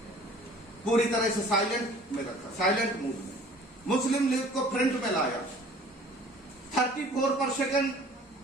पूरी तरह से साइलेंट में रखा, साइलेंट मूड में। मुस्लिम लीग को फ्रंट में लाया। 34%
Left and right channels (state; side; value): normal; both; correlation 0.50